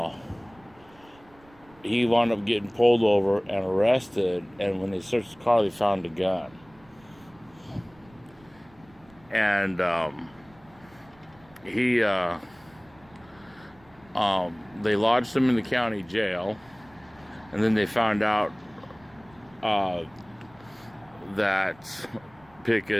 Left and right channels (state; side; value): noise; right; rumble, 27 dB below the sound